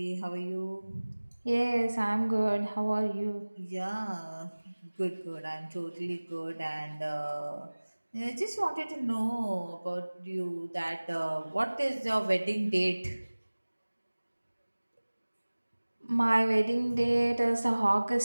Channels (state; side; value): inverted; both; correlation -1.00